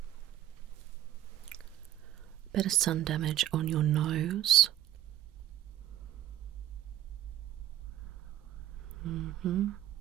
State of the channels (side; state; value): left; quieter; 12.7 dB